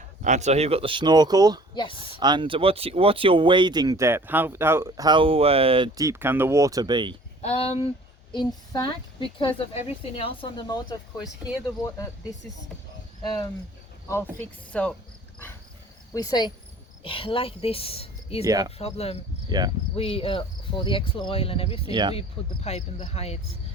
And so you've got the snorkel. Yes. And what's your wading depth? How deep can the water be? In fact, because of everything else on the motor, of course, here the water, this is all fixed. So we say like this is no problem. Yeah. We for the axle oil and everything, we put the pipe in the heights.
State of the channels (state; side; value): normal; both; correlation 0.50